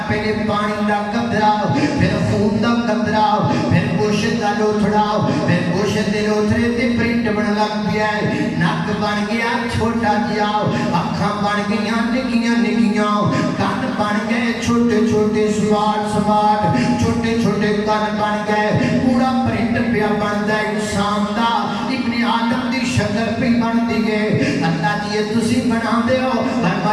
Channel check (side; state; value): both; identical; correlation 1.00